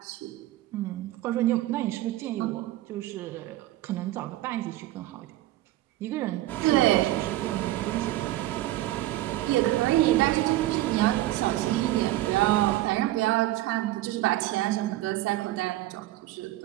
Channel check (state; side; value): quieter; left; 16.0 dB